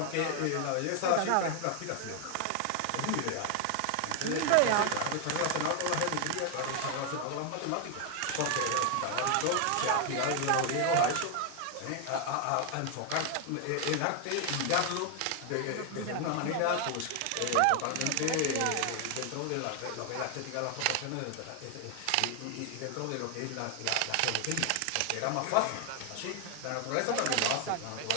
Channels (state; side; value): different; both; correlation 0.00